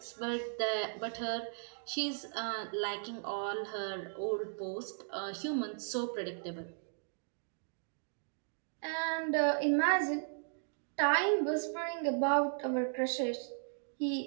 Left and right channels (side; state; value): left; silent; digital silence